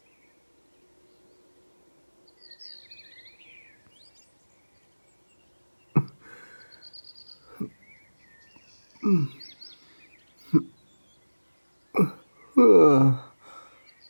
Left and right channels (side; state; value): both; inverted; correlation -1.00